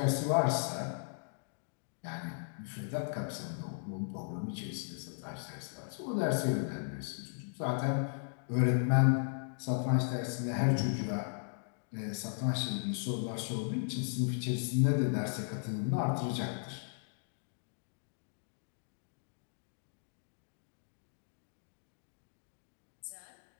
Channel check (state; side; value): silent; right; digital silence